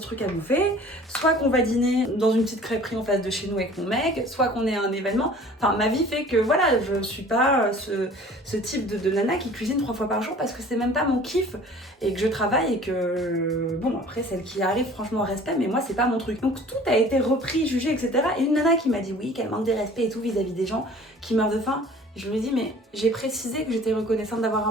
à bouffer, soit qu'on va dîner dans une petite crêperie en face de chez nous avec mon mec, soit qu'on est à un événement. Enfin, ma vie fait que voilà, je suis pas ce type de nana qui cuisine 3 fois par jour parce que c'est même pas mon kiff et que je travaille et que bon, après celle qui arrive, franchement respect, mais moi c'est pas mon truc. Donc tout a été repris, jugé, etc. Et une nana qui m'a dit oui, qu'elle manque de respect et tout vis-à-vis des gens qui meurent de faim. Je lui ai dit, mais j'ai précisé que j'étais reconnaissante d'avoir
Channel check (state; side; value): normal; both; correlation 0.48